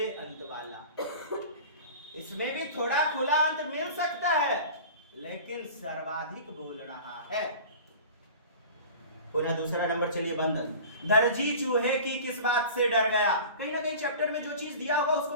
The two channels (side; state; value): both; inverted; correlation -0.38